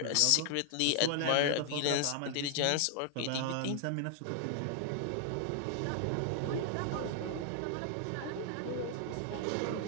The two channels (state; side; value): different; both; correlation 0.00